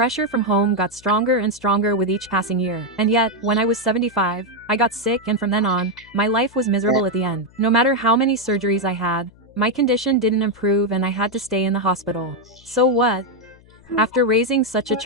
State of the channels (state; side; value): noise; left; hum, 27 dB below the sound